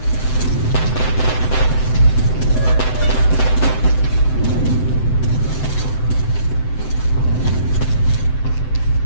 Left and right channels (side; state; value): right; late; 7.8 ms